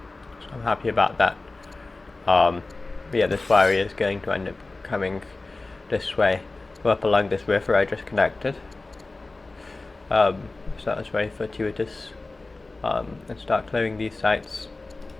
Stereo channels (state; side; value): quieter; right; 3.3 dB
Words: So I'm happy about that. But yeah, this warrior is going to end up coming this way, go up along this river I just connected. So that was very fortuitous. And start clearing these sites.